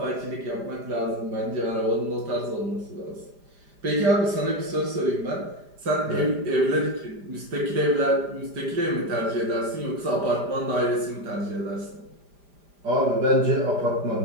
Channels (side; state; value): left; late; 5.0 ms